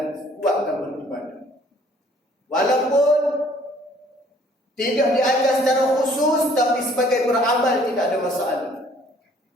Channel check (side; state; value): both; normal; correlation 0.58